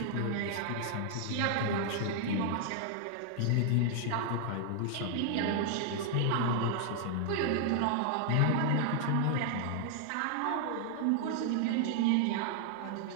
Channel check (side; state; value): both; different; correlation 0.00